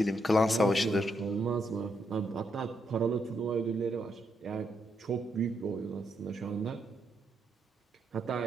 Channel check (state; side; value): normal; both; correlation 0.79